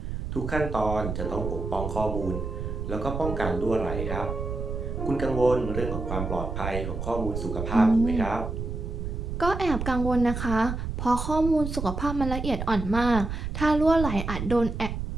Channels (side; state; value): right; noise; rumble, 5 dB below the sound